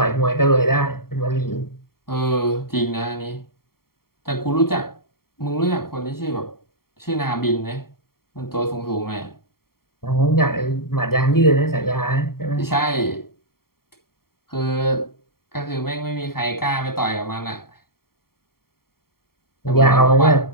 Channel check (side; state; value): right; late; 0.93 ms